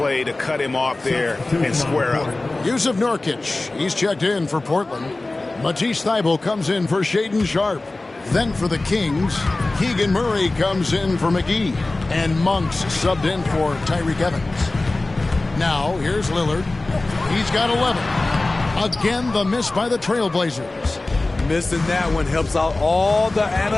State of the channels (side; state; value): right; quieter; 3.0 dB